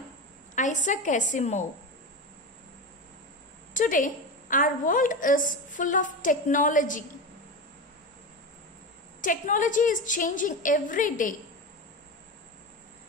Isaac Asimov. Today our world is full of technology. Technology is changing every day.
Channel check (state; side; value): normal; both; correlation 0.21